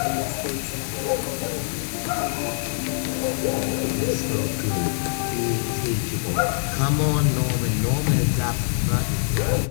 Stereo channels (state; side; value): silent; right; 63 dB below the other